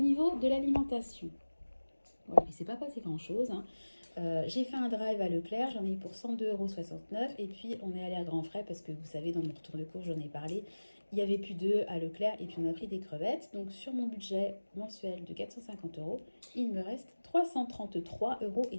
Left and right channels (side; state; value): both; inverted; correlation -1.00